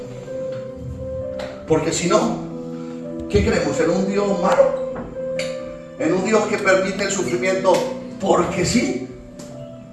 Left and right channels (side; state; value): both; identical; correlation 1.00